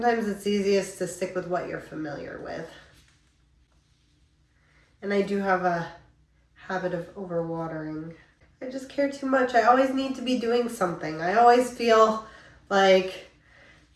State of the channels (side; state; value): both; identical; correlation 1.00